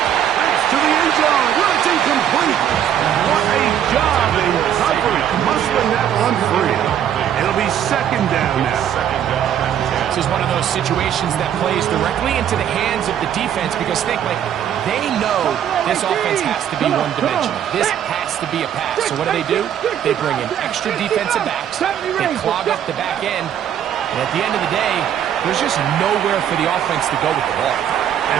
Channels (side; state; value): left; quieter; 9.8 dB